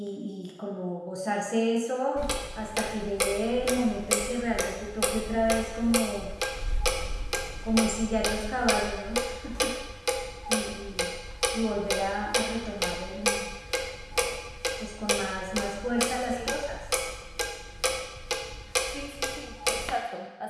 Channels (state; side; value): identical; both; correlation 1.00